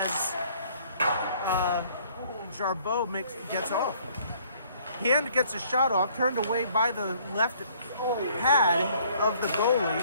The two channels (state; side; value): inverted; both; correlation -0.60